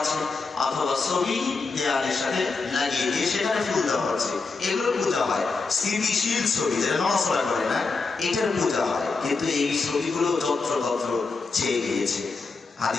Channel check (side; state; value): right; quieter; 4.2 dB